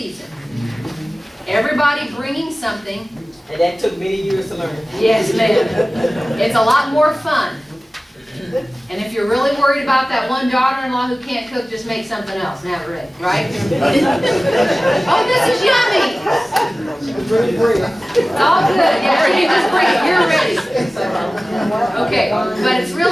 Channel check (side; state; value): both; normal; correlation 0.97